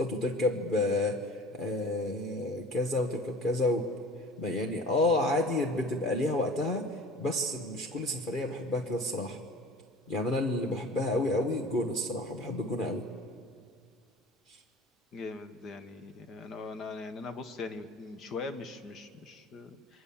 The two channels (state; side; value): normal; both; correlation 0.42